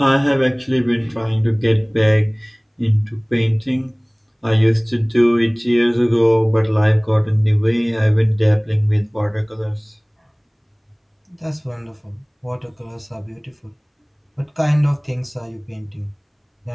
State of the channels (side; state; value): both; identical; correlation 1.00